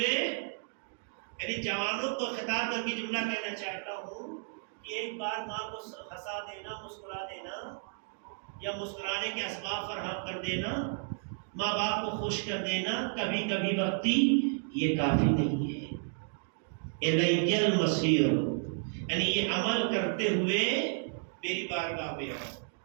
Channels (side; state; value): left; silent; digital silence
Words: یعنی جوانوں کو خطاب کر کے جملہ کہنا چاہتا ہوں کہ ایک بار ماں کو ہنسا دینا، مسکرا دینا یا مسکرانے کے اسباب فراہم کر دینا، ماں باپ کو خوش کر دینا کبھی کبھی وقتی، یہ کافی نہیں ہے. الی المصیر یعنی یہ عمل کرتے ہوئے میری بارگاہ میں آؤ.